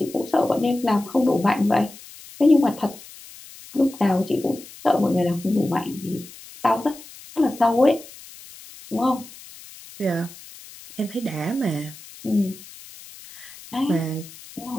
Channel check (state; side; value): noise; left; hiss, 18 dB below the sound